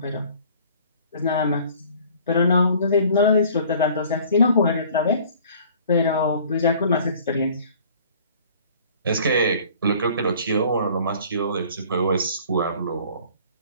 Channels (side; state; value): both; inverted; correlation -0.52